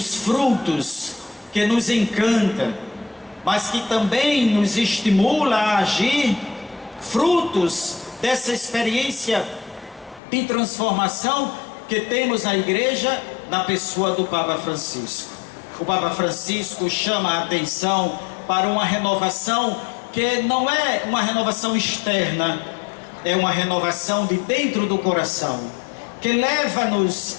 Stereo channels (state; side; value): drops out; right; at 10.2 s